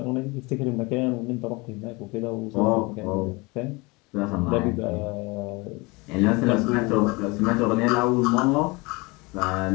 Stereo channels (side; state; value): right; quieter; 25.7 dB